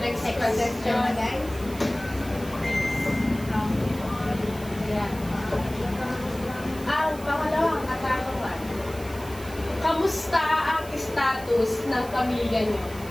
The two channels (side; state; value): right; noise; hiss, 18 dB below the sound